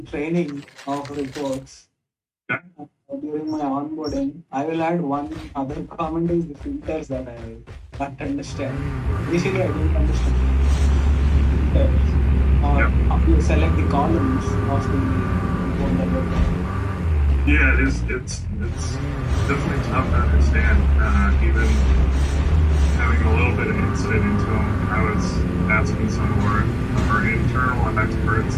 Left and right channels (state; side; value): identical; both; correlation 1.00